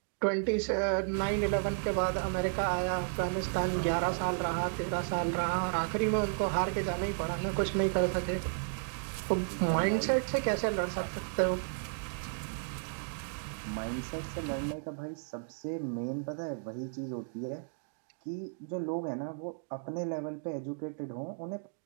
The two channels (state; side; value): silent; left; digital silence